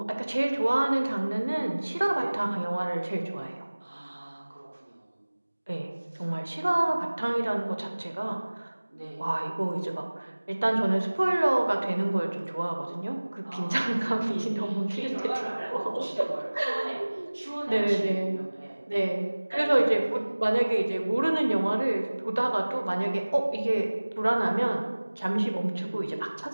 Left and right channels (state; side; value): inverted; both; correlation -1.00